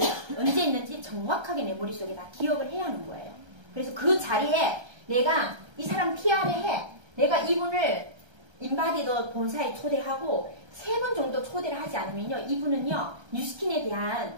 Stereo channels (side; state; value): left; late; 1.3 ms